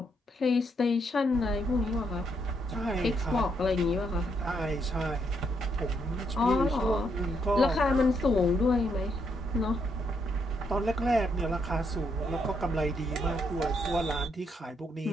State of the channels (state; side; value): normal; both; correlation 0.76